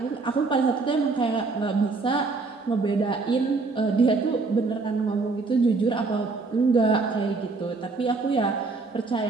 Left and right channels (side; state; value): left; quieter; 4.0 dB